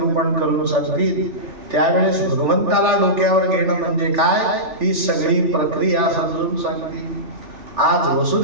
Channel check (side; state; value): left; late; 3.4 ms